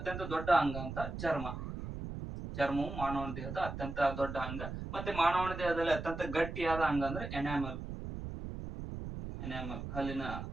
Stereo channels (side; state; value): right; noise; rumble, 7 dB below the sound